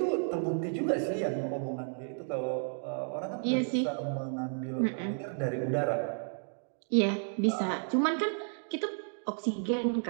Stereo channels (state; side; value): silent; left; 56 dB below the other